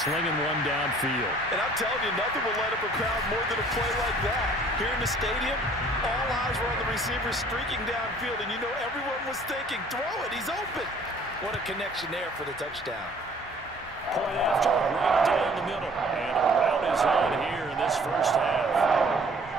slinging one downfield. And I'm telling you, nothing will light up a crowd more than a play like that. Here in the stadium, all eyes were on the receiver streaking downfield, and you know everyone was thinking, throw it, he's open. What a connection there for the touchdown. Point after, right down the middle. And a rout is on here in this first half.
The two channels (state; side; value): normal; both; correlation 0.55